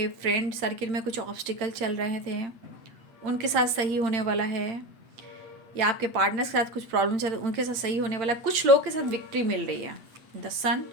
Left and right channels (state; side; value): late; left; 8.8 ms